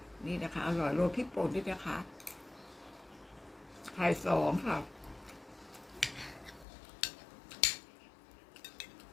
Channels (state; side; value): drops out; right; at 6.7 s